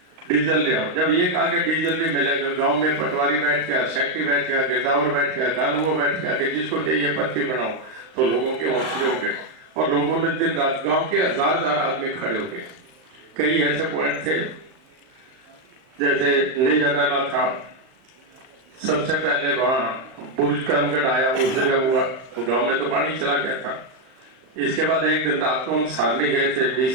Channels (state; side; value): late; left; 38 ms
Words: डीजल ले आओ। जब ये कहा कि डीजल भी मिलेगा, गांव में पटवारी बैठ गया, सेक्रेटरी बैठ गया, गिरदावर बैठ गया, कानून बैठ गया कि जिसको चाहिए पर्ची बनाओ, तो लोगों के हौसले हो गए, और लोगों ने दिन रात गांव के हजार आदमी खड़े हो गए। कई ऐसे पॉइंट थे, जैसे लेजराला था, सबसे पहले वहां बुर्ज करमगढ़ आया, उस जगह हुआ, तो गांव में तो पानी चला गया था। इसके बाद एक दिन रात को हम सारनी गए थे,